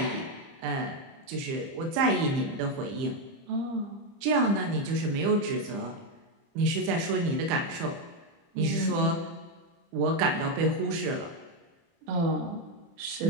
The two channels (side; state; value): left; late; 30 ms